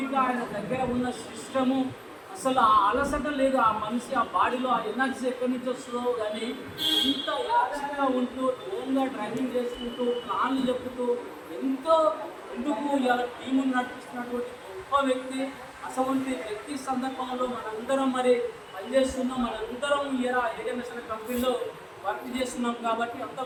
ఆయన దగ్గర ఉన్న సిస్టము, అసలు ఆ అలసట లేదు ఆ మనిషి, ఆ బాడీలో ఆ ఎనర్జీ ఎక్కడి నుంచి వస్తుందో కానీ ఇంత యాక్టివ్గా ఉంటూ ఓన్గా డ్రైవింగ్ చేసుకుంటూ ప్లాన్లు చెప్పుతూ ఎంతో ఎందుకు ఇలా టీమును నడిపిస్తున్నటువంటి గొప్ప వ్యక్తి. అటువంటి వ్యక్తి సందర్భంలో మనందరం మరి పనిచేస్తున్నాం, మనందరం ఇలా ఏడిఎంఎస్ అనే కంపెనీలో వర్క్ చేస్తున్నాం కాబట్టి అంత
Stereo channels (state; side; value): identical; both; correlation 1.00